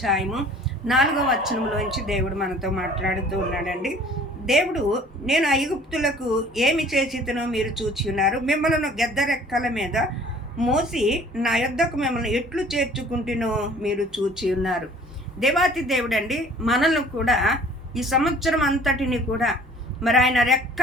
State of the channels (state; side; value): normal; both; correlation 0.52